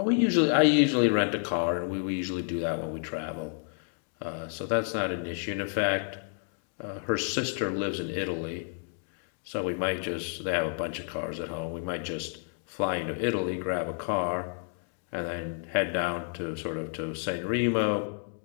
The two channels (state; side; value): silent; right; 58 dB below the other